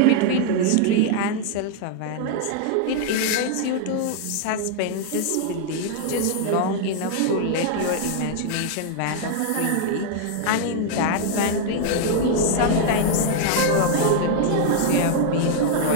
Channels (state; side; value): different; both; correlation 0.00